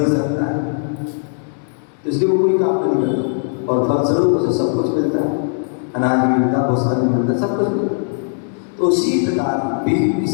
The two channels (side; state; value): right; silent; 67 dB below the other